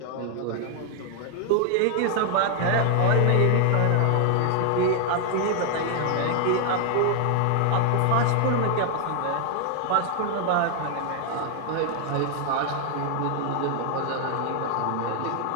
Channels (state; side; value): different; both; correlation 0.00